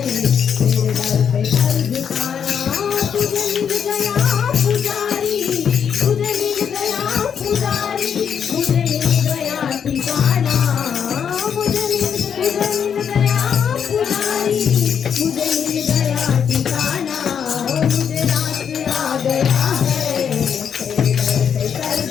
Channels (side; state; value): right; quieter; 7.7 dB